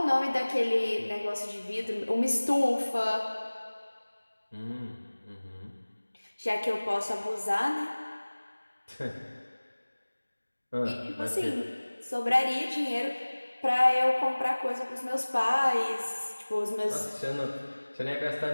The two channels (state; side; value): inverted; both; correlation -1.00